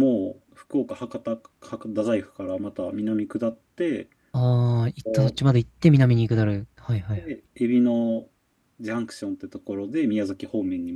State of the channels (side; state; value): both; identical; correlation 1.00